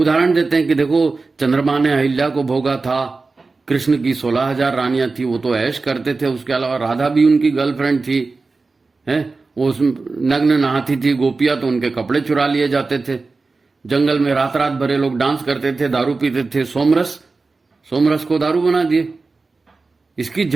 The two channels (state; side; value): quieter; left; 3.9 dB